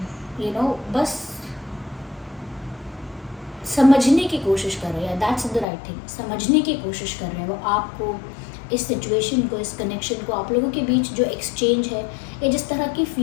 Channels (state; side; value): drops out; right; at 5.7 s